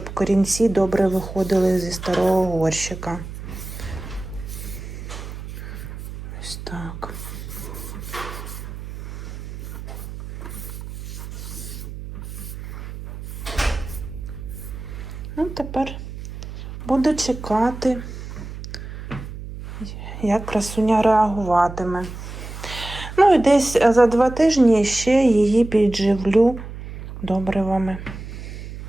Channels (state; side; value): noise; right; hum, 10 dB below the sound